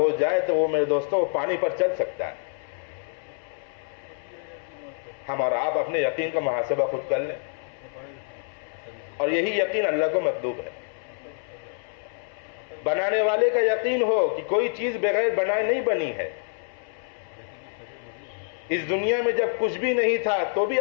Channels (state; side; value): silent; right; 60 dB below the other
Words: جائے تو وہ میرے دوستوں پانی پر چل سکتا ہے۔ ہم اور آپ اپنے یقین کا محاسبہ خود کر لیں، اور یہی یقین اللہ کو مطلوب ہے۔ بنانے والے کا یقین ہو کہ کوئی چیز بغیر بنائے نہیں بنی ہے۔ اس دنیا میں جب کچھ بھی نہیں تھا تو بھی